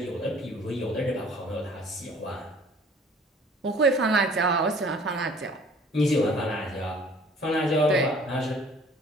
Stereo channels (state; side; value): normal; both; correlation 0.53